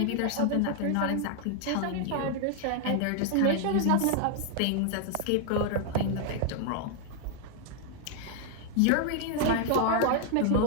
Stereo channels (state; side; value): different; both; correlation 0.00